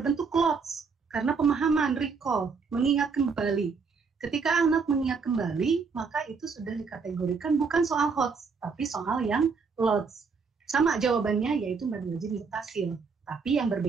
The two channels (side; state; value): left; quieter; 5.1 dB